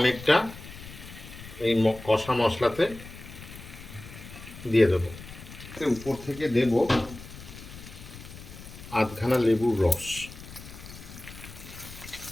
এই কষা মশলাতে দিয়ে দেবো। উপর থেকে দেব আধখানা লেবুর রস।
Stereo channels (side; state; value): left; noise; rumble, 15 dB below the sound